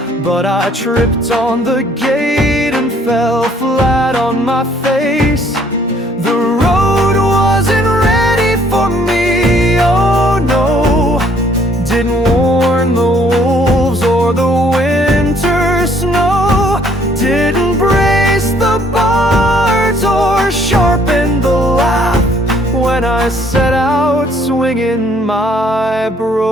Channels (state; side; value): normal; both; correlation 0.63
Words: but I tripped on the gate and fell flat on my face. The road wasn't ready for me, oh no. Didn't warn the wolves or the winter snow. Didn't brace the bards or sharpen the laugh when I set out swinging my